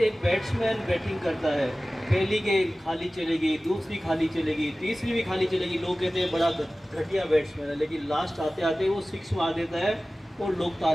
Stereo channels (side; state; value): both; normal; correlation 0.97